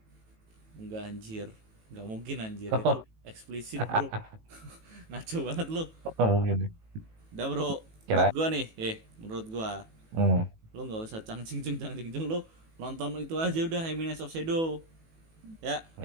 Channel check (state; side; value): late; left; 18 ms